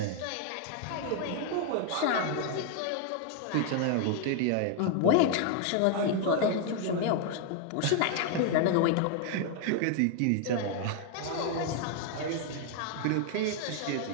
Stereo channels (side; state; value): both; different; correlation 0.00